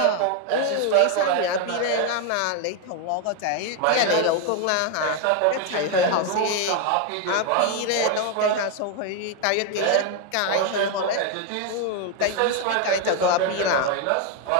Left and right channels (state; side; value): different; both; correlation 0.01